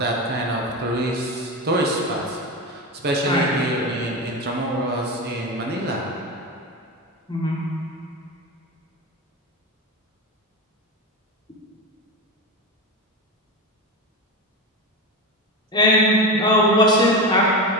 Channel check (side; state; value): both; normal; correlation 0.20